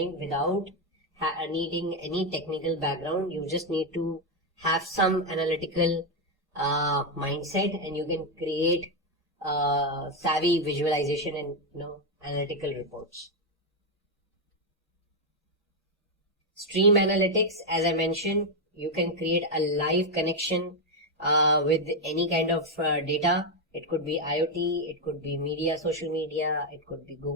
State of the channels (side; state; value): both; normal; correlation 0.03